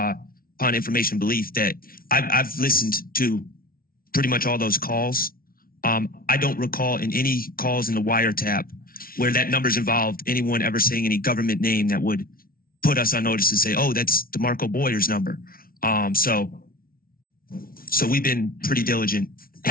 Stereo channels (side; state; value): right; late; 0.43 ms